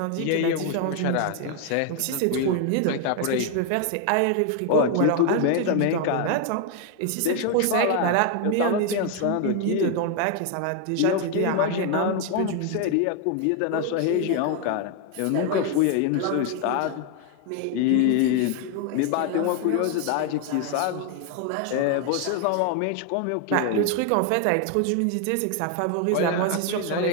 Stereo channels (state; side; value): different; both; correlation 0.01